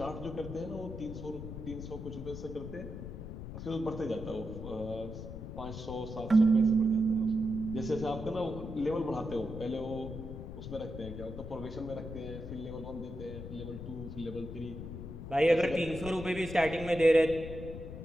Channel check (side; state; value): left; noise; rumble, 9 dB below the sound